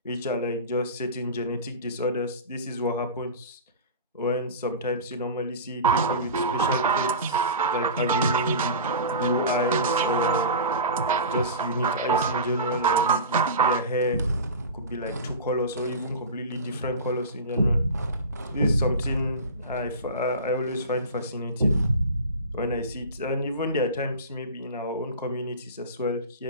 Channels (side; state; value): both; inverted; correlation -0.31